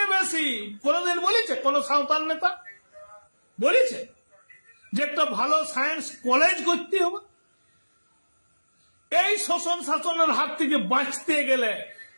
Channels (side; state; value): both; inverted; correlation -1.00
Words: বেশি। কোনদিন বলেছে কোন সাঁওতাল নেতা বলেছে যে একটা ভালো সায়েন্স কলেজ করতে হবে? এই শোষণ শাসনের হাত থেকে বাঁচতে গেলে,